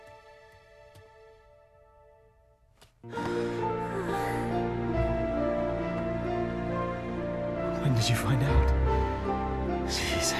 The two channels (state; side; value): identical; both; correlation 1.00